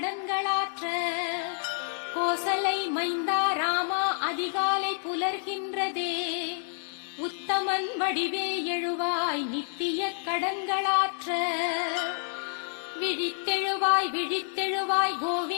கோசலை மைந்தா ராமா அதிகாலை புலர்கின்றதே. உத்தமன் வடிவே எழுவாய் நித்திய கடன்களாற்ற, விழித்தெழுவாய் விழித்தெழுவாய்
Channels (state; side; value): silent; right; 59 dB below the other